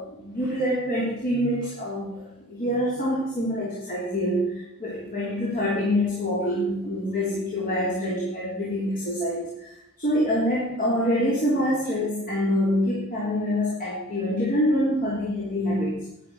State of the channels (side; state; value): both; normal; correlation 0.46